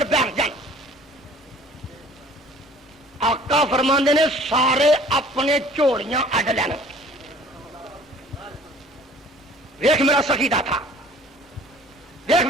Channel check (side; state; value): both; normal; correlation 0.52